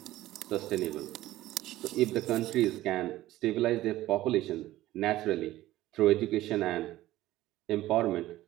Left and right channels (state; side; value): quieter; left; 15.6 dB